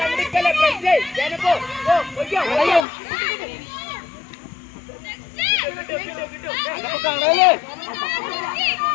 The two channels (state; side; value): drops out; right; at 2.9 s